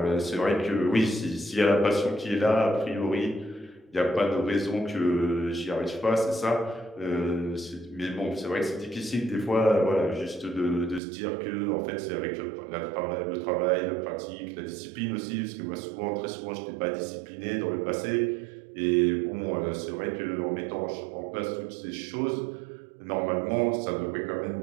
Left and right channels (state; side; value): drops out; left; at 11.0 s